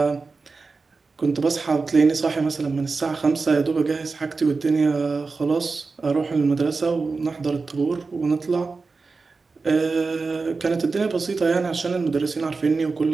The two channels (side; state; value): left; quieter; 4.2 dB